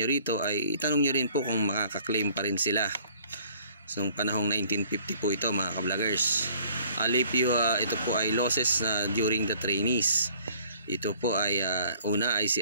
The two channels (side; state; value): both; inverted; correlation -0.56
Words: rito, ay itanong nyo rin po kung makaka-claim pa rin sila. So panahong 1950 po ito mga ka-vloggers. Alipio, ito po ay losses during the trainees. Ito po ay una ay